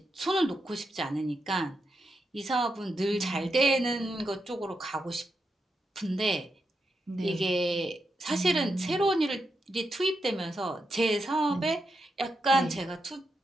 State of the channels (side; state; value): both; normal; correlation 0.85